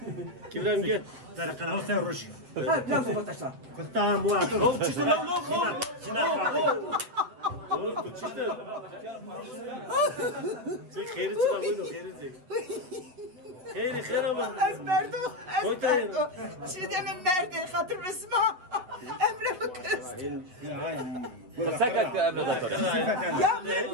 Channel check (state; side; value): late; left; 8.3 ms